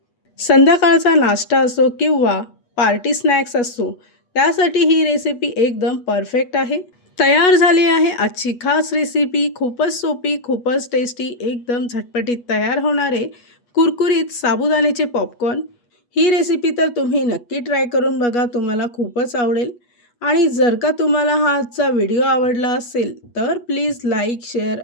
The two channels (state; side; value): late; right; 8.3 ms